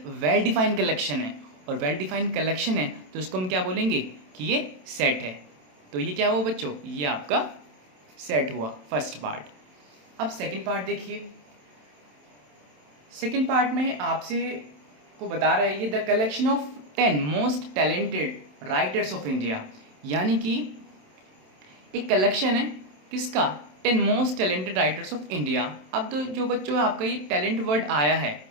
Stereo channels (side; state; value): left; late; 27 ms